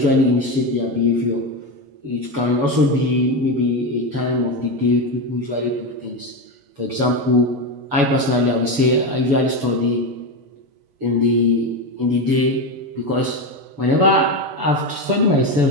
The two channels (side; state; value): left; late; 7.0 ms